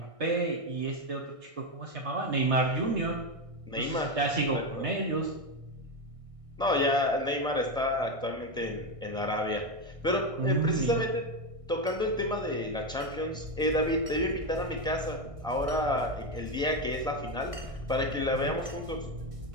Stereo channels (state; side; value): late; left; 1.6 ms